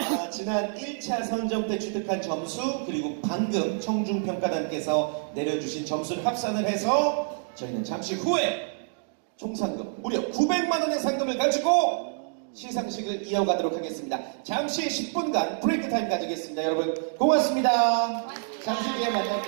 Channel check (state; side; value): silent; left; digital silence